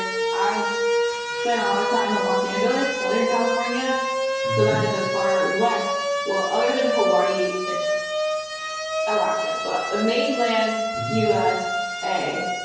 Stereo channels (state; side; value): identical; both; correlation 1.00